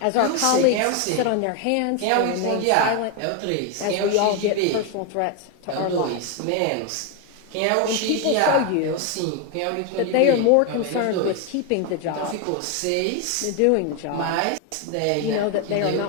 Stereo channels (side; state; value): both; different; correlation 0.01